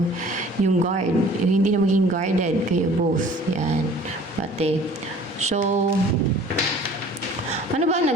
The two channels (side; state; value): both; normal; correlation 0.50